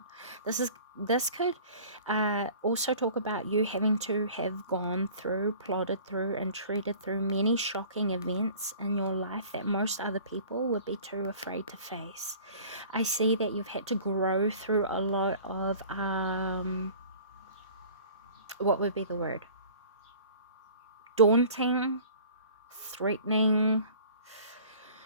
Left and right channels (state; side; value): inverted; both; correlation -0.47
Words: This could also talk about you having to have gone through, plodded through, and treated through many shocking events in your life that most other people would be too afraid to face. I see that you've had to grow through a lot of what would be the word, daunting, threatening,